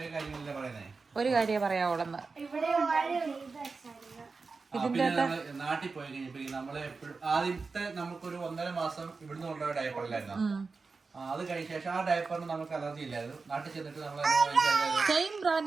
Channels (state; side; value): quieter; left; 4.3 dB